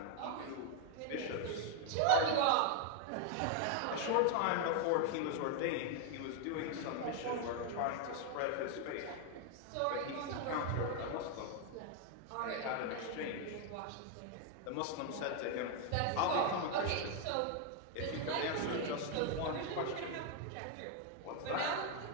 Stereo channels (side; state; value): both; different; correlation 0.01